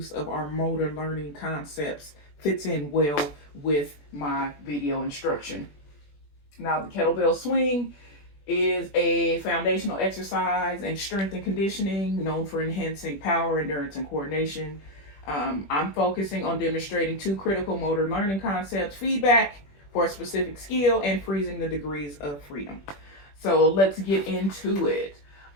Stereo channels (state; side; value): late; right; 21 ms